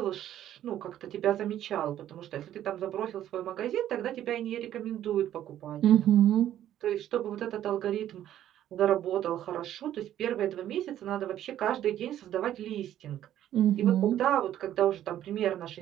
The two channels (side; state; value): left; quieter; 11.8 dB